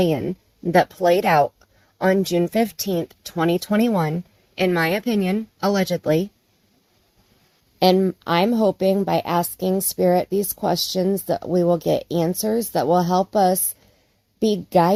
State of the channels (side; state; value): both; identical; correlation 1.00